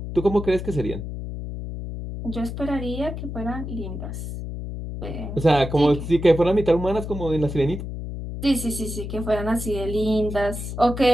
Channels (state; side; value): noise; left; hum, 7 dB below the sound